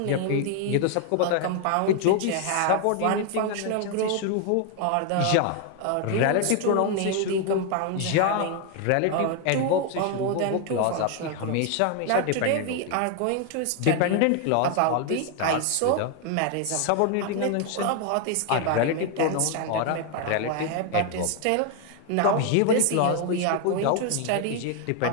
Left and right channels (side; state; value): both; different; correlation 0.00